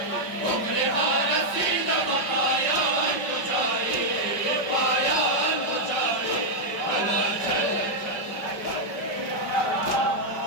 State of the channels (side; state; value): right; late; 5.6 ms